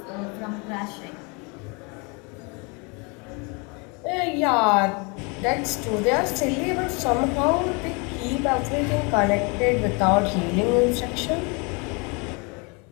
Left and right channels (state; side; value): quieter; right; 31.2 dB